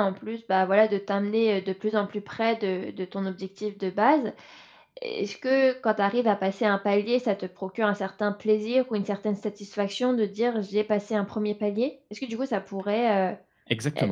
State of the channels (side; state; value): both; identical; correlation 1.00